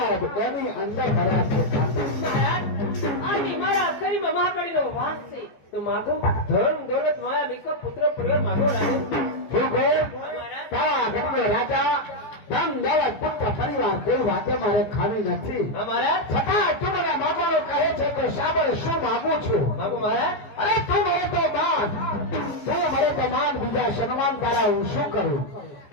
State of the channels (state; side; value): late; right; 14 ms